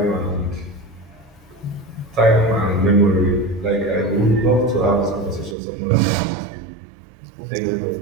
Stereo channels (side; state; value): left; drops out; at 5.6 s